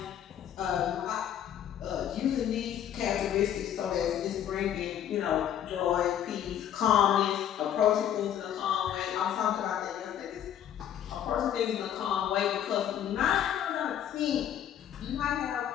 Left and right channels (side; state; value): right; quieter; 10.2 dB